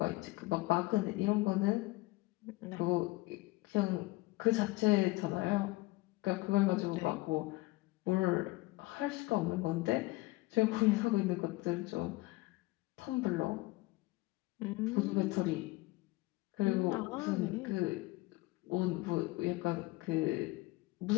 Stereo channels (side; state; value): right; quieter; 20.9 dB